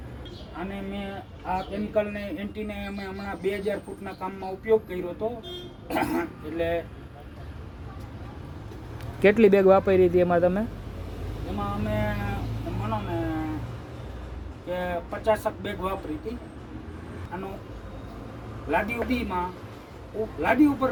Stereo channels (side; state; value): both; identical; correlation 1.00